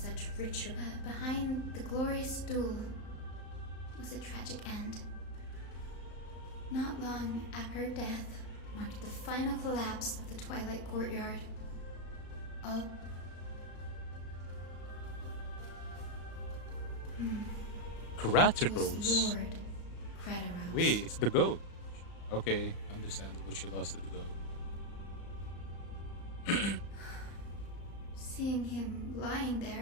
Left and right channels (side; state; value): right; late; 35 ms